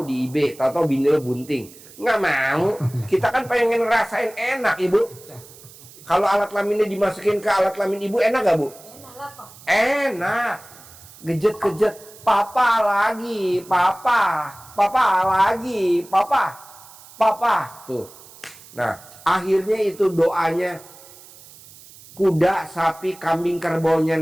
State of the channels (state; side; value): noise; right; hiss, 21 dB below the sound